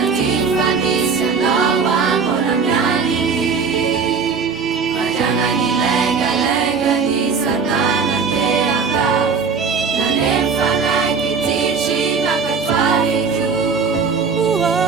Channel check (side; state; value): left; quieter; 5.4 dB